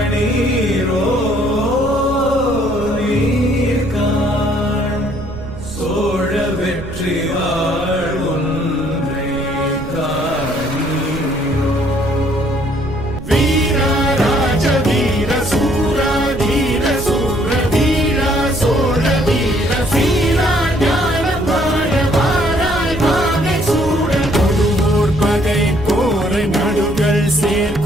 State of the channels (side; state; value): right; noise; rumble, 11 dB below the sound